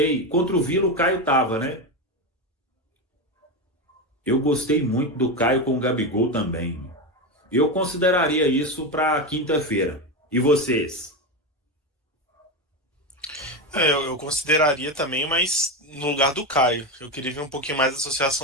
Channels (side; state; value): both; normal; correlation 0.15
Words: Contra o Vila, o Caio tava, né? Eu gostei muito do Caio com o Gabigol também. Eu consideraria isso para quinta-feira. E vocês? Eu consideraria também, mas no lugar do Caio. Eu queria ver um pouquinho mais a